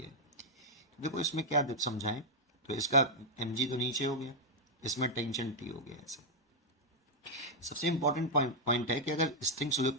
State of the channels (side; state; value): both; normal; correlation -0.04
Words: तो देखो इसमें क्या समझाएं, तो इसका एम जी तो नीचे हो गया, इसमें टेंशन टी हो गया ऐसे। सबसे इंपॉर्टेंट पॉइंट है कि अगर स्ट्रिंग